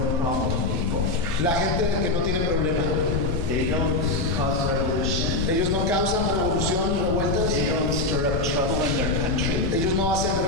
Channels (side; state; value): left; noise; rumble, 5 dB below the sound